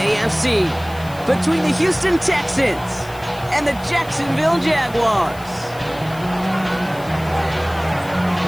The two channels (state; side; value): noise; left; hiss, 21 dB below the sound